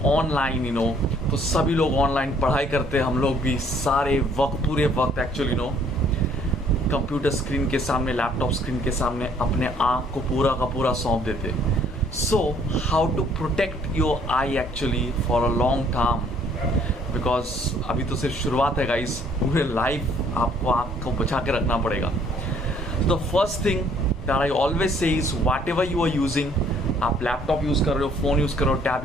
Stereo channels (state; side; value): normal; both; correlation 0.62